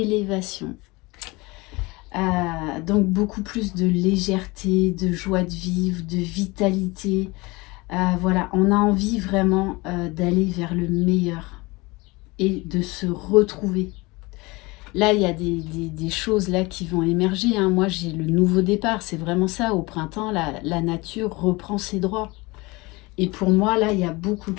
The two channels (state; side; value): quieter; right; 23.8 dB